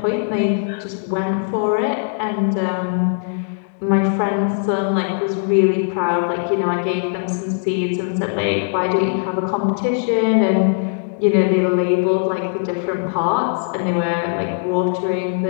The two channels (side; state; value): right; silent; digital silence